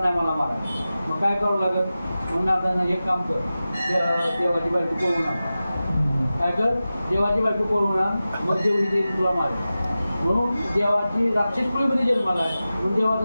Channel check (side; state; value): both; inverted; correlation -0.95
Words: नाही मला मारायला मग काय करावं लागेल. मग नारदानं एक काम कर देवाची बायको पळवून आण काय कर देवाची बायको पळवून आण मग देव इथे तुला मारेल. म्हणून देवाची राक्षस कुळीमध्ये जन्माला आहे म्हणून देवाचं